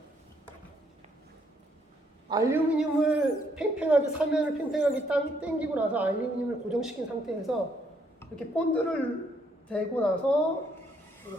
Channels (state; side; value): normal; both; correlation 0.71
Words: 알루미늄을 팽팽하게, 사면을 팽팽하게 당기고 나서 알루미늄을 고정시킨 상태에서 이렇게 본드를 대고 나서